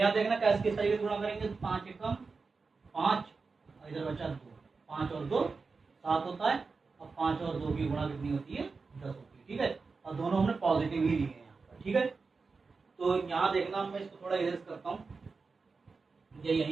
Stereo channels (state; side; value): quieter; left; 4.5 dB